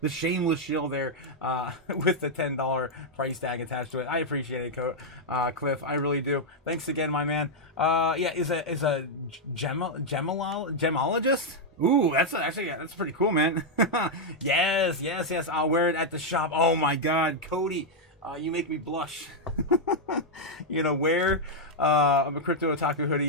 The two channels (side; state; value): both; normal; correlation -0.02